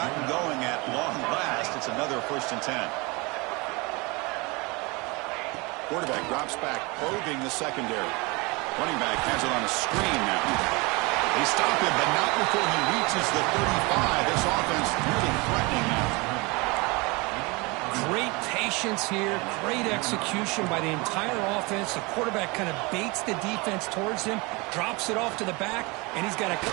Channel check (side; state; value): left; quieter; 26.5 dB